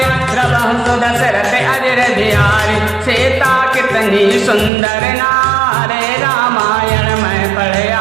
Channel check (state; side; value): drops out; left; at 4.7 s